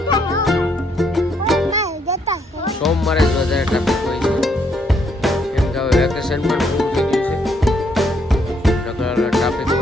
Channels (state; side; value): normal; both; correlation 0.72